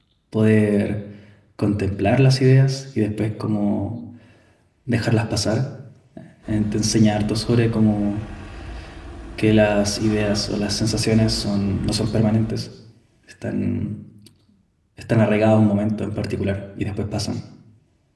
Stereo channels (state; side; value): identical; both; correlation 1.00